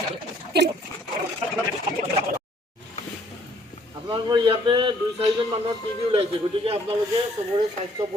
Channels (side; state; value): both; normal; correlation 0.62